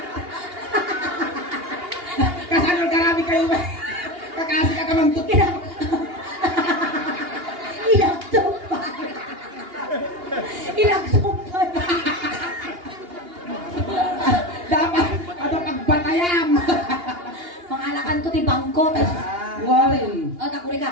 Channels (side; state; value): left; late; 2.8 ms